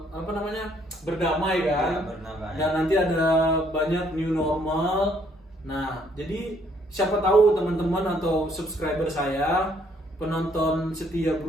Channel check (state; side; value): normal; both; correlation 0.66